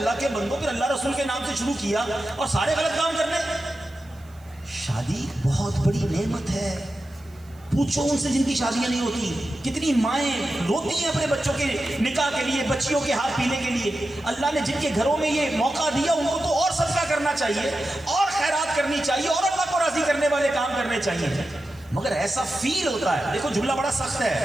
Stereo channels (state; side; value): noise; right; hiss, 29 dB below the sound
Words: کے بندوں، پھر اللہ رسول کے نام سے شروع کیا اور سارے غلط کام کرنے۔ شادی بہت بڑی نعمت ہے، پوچھو ان سے جن کی شادیاں نہیں ہوتی، کتنی مائیں روتی ہیں اپنے بچوں کے نکاح کے لیے، بچیوں کے ہاتھ پینے کے لیے۔ اللہ نے جن کے گھروں میں یہ موقع دیا ان کو تو اور صدقہ کرنا چاہیے، اور خیرات کرنی چاہیے، اور اللہ کو راضی کرنے والے کام کرنے چاہیے۔ مگر ایسا فیل ہوتا ہے، دیکھو جملہ بڑا سخت